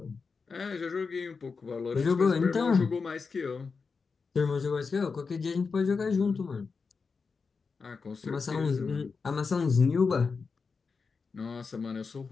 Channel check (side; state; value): right; quieter; 4.9 dB